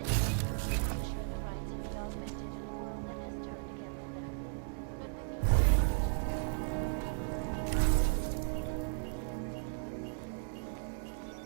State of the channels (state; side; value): silent; left; digital silence